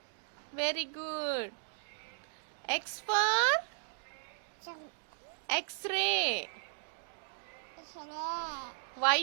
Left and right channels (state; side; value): silent; left; digital silence